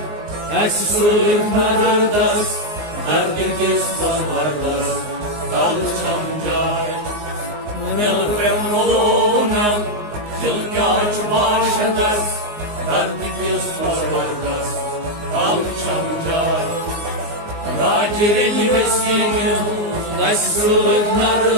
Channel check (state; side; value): late; left; 19 ms